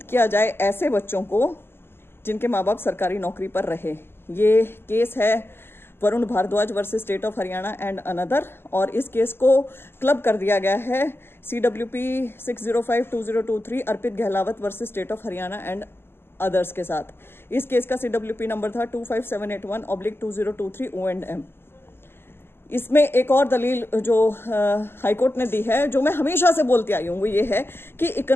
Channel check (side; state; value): right; late; 0.11 ms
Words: किया जाए ऐसे बच्चों को जिनके माँ बाप सरकारी नौकरी पर रहे। ये केस है Varun Bhardwaj versus state of Haryana and another, और इस केस को क्लब कर दिया गया है CWP 6052023 Arpit Gahlawat versus state of Haryana and others के साथ। इस केस का CWP नंबर था 25781/2023 O&M। इसमें एक और दलील जो हाईकोर्ट ने दी है, जो मैं हमेशा से बोलती आई हूँ, वो ये है कि